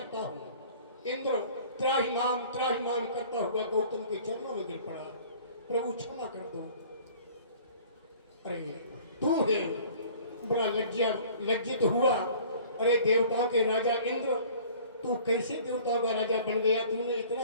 हूं। इंद्र त्राहिमाम करता हुआ गौतम के चरणों में गिर पड़ा, प्रभु क्षमा कर दो। अरे तू है, बड़ा लज्जित हुआ। अरे देवताओं के राजा इंद्र, तू कैसे देवताओं का राजा बन गया, तूने इतना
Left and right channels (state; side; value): inverted; both; correlation -0.50